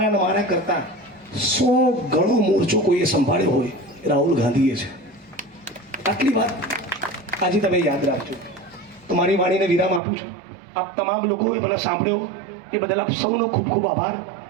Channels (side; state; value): left; drops out; at 10.0 s